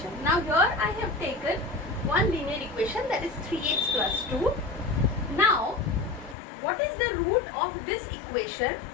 Now here I have taken one linear equation, that is 3x plus 2. Now what is the root of this equation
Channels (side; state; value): right; drops out; at 6.4 s